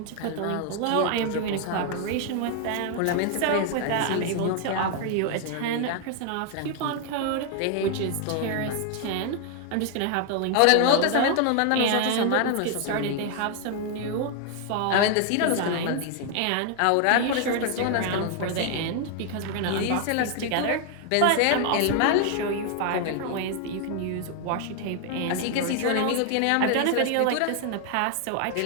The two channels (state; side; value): different; both; correlation 0.00